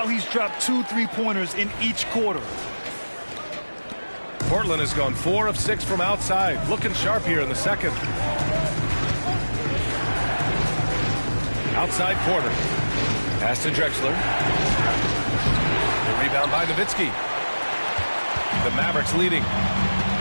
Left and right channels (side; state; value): both; inverted; correlation -1.00